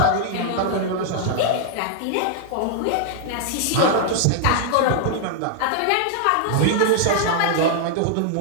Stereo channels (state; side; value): different; both; correlation -0.01